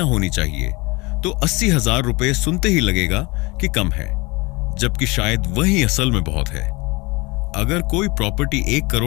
होनी चाहिए, तो 80,000 रुपये सुनते ही लगेगा कि कम है, जबकि शायद वही असल में बहुत है। अगर कोई प्रॉपर्टी 1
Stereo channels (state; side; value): quieter; right; 25.0 dB